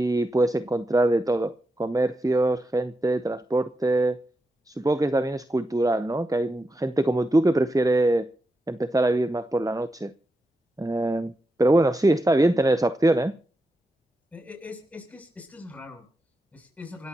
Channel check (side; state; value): both; normal; correlation 0.87